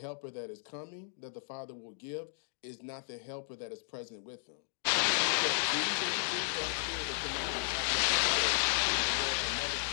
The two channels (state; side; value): silent; right; digital silence